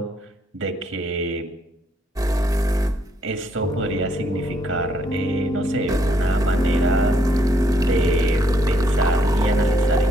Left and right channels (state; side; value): normal; both; correlation 0.72